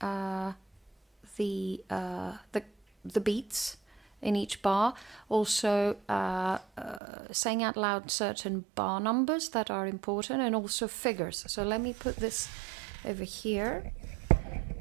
the beats in each bar, also saying out loud certain bar numbers that are important, and also figures. So let me put this over here,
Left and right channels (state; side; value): drops out; left; at 7.0 s